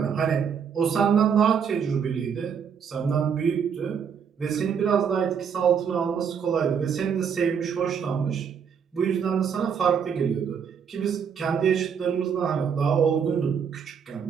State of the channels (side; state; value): left; quieter; 7.1 dB